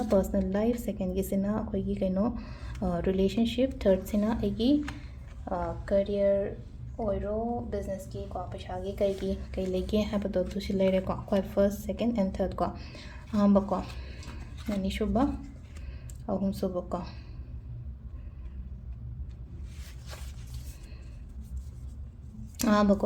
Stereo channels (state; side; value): identical; both; correlation 1.00